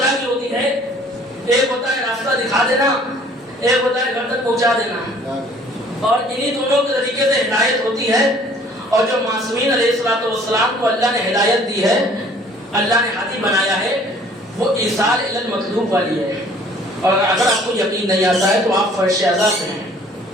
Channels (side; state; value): both; normal; correlation 0.55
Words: کی ہوتی ہے. ایک ہوتا ہے راستہ دکھا دینا, ایک ہوتا ہے گھر تک پہنچا دینا. اور انہی دونوں کے طریقے سے ہدایت ہوتی ہے. اور جو معصومین علیہ الصلوۃ والسلام کو اللہ نے ہدایت دی ہے, اللہ نے ہادی بنایا ہے, وہ ایصال الی المطلوب والی ہے. اور اگر آپ کو یقین نہیں آتا ہے تو آپ فرش اعظم ہیں.